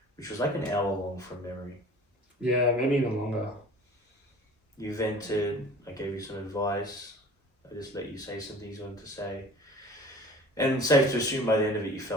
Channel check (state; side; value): normal; both; correlation 0.44